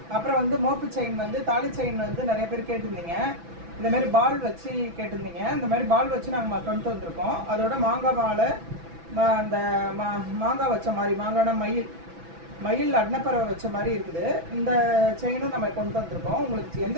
அப்புறம் வந்து மோப்பு செயின் வந்து தாலி செயின் வந்து நிறைய பேர் கேட்டிருந்தீங்க. இந்தமாரி பால் வச்சு கேட்டிருந்தீங்க. இந்த மாதிரி பால் வச்சு நாங்கள் கொண்டு வந்திருக்கோம். அதோட மாங்காய் மாலை, அந்த மாங்காய் வச்ச மாதிரி மாங்கான மயில் அன்னப்பறவை வச்ச மாதிரி இருக்குது. இந்த செயினும் நம்ம கொண்டு வந்திருக்கோம். உங்களுக்கு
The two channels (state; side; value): late; left; 6.0 ms